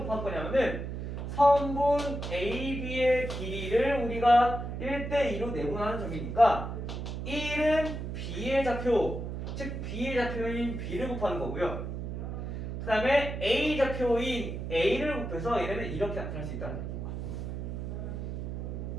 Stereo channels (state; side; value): noise; right; hum, 5 dB below the sound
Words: 곱할 거냐면은 선분 AB의 길이를 우리가 1대 2로 내분하는 점이니까 1은 B의 좌표, 즉 B의 좌표인 B를 곱하는 거고요. 그 다음에 A 좌표인 A를 곱해서 얘네는 이렇게 나타날 수 있다는 거예요.